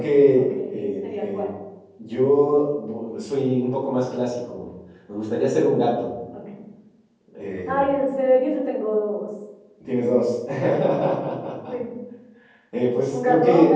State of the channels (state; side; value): identical; both; correlation 1.00